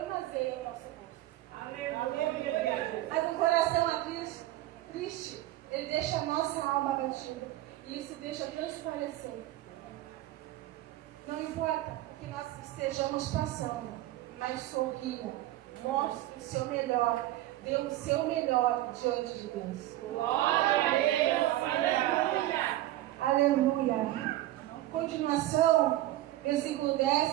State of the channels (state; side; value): quieter; left; 15.3 dB